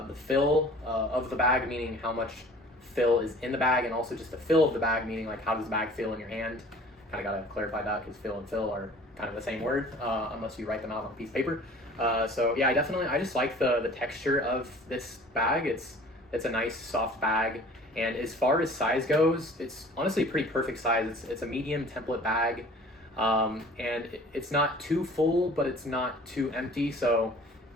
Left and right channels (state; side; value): normal; both; correlation 0.47